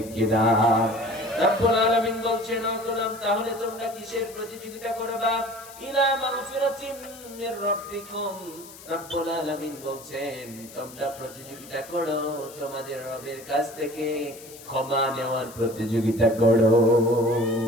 কিনা? রব্বুল আলামিন বলছেন ও গোলাম তাহলে তোমরা কিসের প্রতিযোগিতা করবা ইলা মাগফিরাতিম মির রাব্বিকুম রব্বুল আলামিন বলছেন তোমরা প্রতিযোগিতা করো তোমাদের রবের কাছ থেকে ক্ষমা নেওয়ার প্রতিযোগিতা করো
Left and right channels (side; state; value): left; noise; hiss, 18 dB below the sound